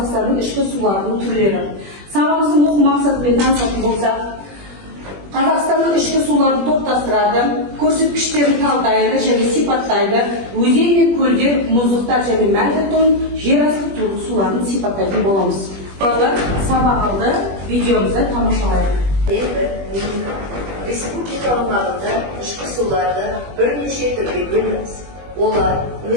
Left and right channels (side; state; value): left; late; 21 ms